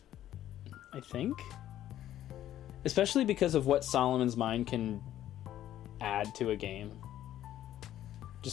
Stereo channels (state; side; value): quieter; right; 12.3 dB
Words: I think, especially because of what Solomon's Mind can add to a game,